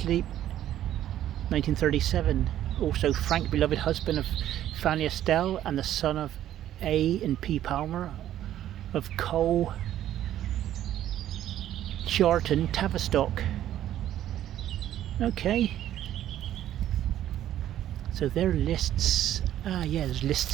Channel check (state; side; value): quieter; left; 12.0 dB